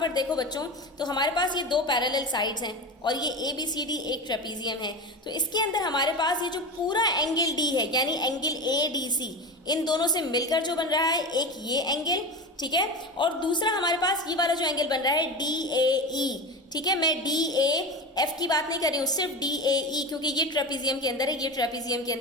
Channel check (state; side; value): normal; both; correlation 0.25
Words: देखो बच्चों, तो हमारे पास ये दो पैरेलल साइड्स हैं और ये ABCD एक ट्रेपीजियम है। तो इसके अंदर हमारे पास ये जो पूरा एंगल D है, यानी एंगल ADC, इन दोनों से मिलकर जो बन रहा है एक ये एंगल, ठीक है, और दूसरा हमारे पास ये वाला जो एंगल बन रहा है DAE, ठीक है। मैं DAF की बात नहीं कर रही हूँ, सिर्फ DAE, क्योंकि ये ट्रेपीजियम के अंदर है, ये ट्रेपीजियम के